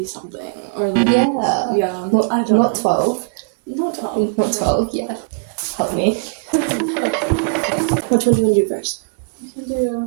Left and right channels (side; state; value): left; quieter; 39.3 dB